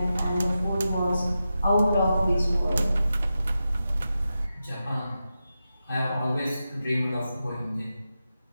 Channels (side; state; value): both; inverted; correlation -0.90